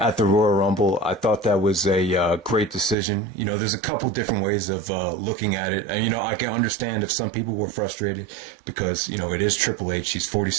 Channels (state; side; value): drops out; left; at 3.0 s